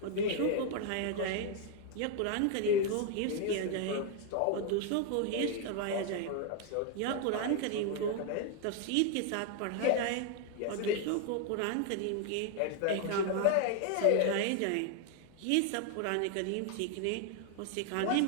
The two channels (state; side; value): different; both; correlation 0.01